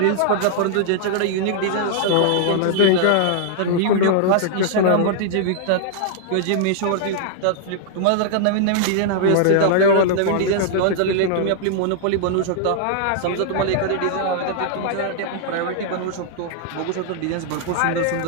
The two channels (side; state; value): both; different; correlation -0.01